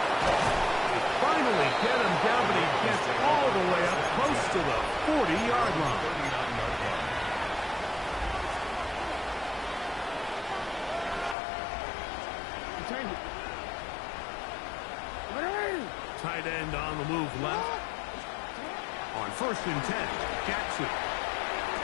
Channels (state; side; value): drops out; right; at 11.4 s